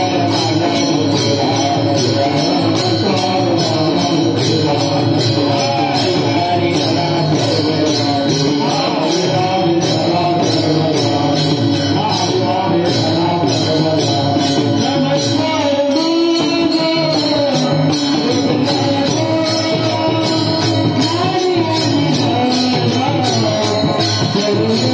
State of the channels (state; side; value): identical; both; correlation 1.00